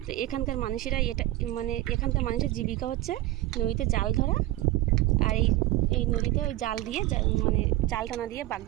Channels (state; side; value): quieter; left; 16.5 dB